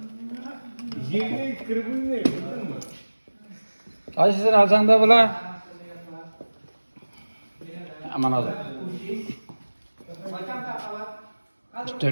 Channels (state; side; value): inverted; both; correlation -1.00